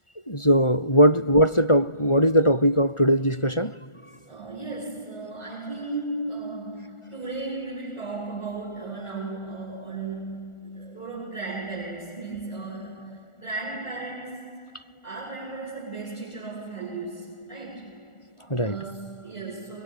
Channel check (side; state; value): right; late; 1.4 ms